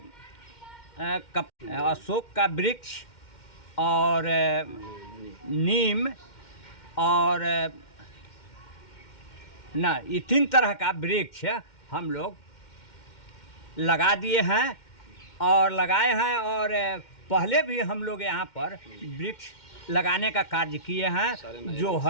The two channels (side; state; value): right; late; 2.1 ms